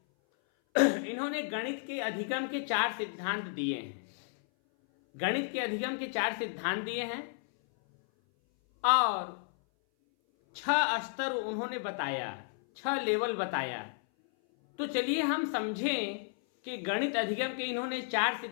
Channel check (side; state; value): right; silent; 56 dB below the other